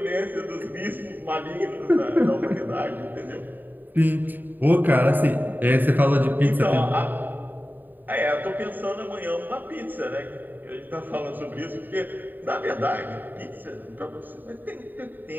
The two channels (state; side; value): late; left; 0.089 ms